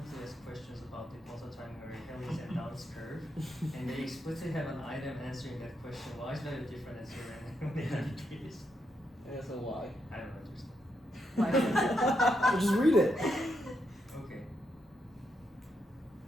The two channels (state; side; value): normal; both; correlation 0.81